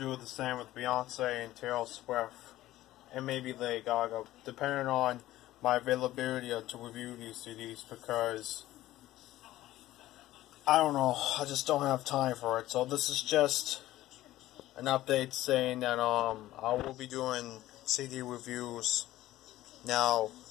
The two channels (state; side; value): quieter; right; 15.4 dB